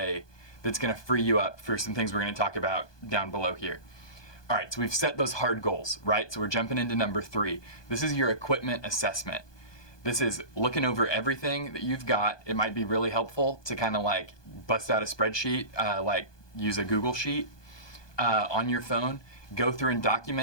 that's gonna free you up for some things we're gonna talk about down below here. All right, so we've set those hard goals, right? So we're jumping into number 3. This is your equipment assessment. This is looking over everything that you've got. It might be really helpful to kind of like bust out a spreadsheet, like use a Google Sheet on your phone, go through and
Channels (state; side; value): late; right; 1.2 ms